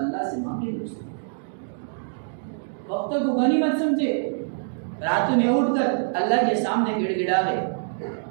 سے مانگے دوستو۔ وقت کو غنیمت سمجھے، راتوں میں اٹھ کر اللہ کے سامنے گڑ گڑاوے،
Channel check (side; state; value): left; silent; digital silence